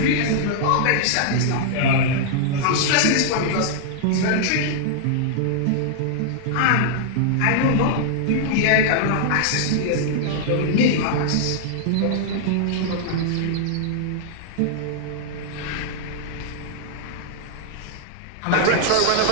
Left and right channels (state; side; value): different; both; correlation -0.01